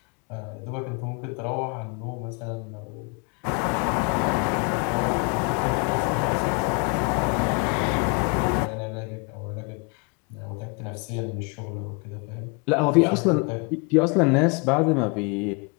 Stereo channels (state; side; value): quieter; right; 33.5 dB